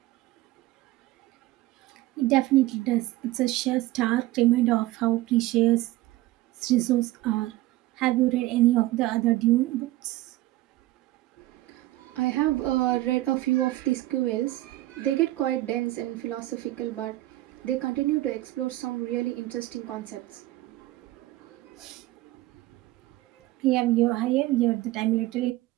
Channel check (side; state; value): left; quieter; 17.0 dB